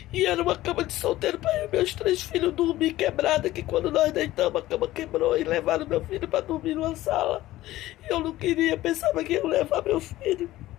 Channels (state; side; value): quieter; right; 16.0 dB